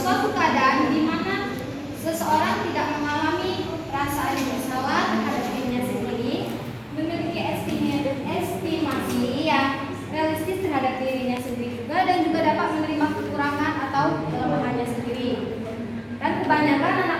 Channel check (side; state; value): both; identical; correlation 1.00